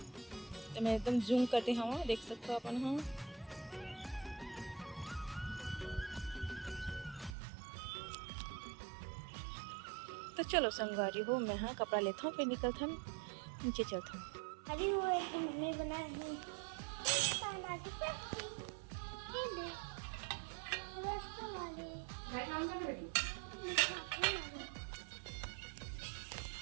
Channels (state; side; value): drops out; left; at 7.4 s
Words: तो मैं एकदम जूम करते हवा देख सकते हो अपन। हाँ तो चलो संगवारी हो मैं हाँ कपड़ा लेता हूँ फिर निकलता हूँ नीचे चलता हूँ। अभी वो एक मम्मी बनाई है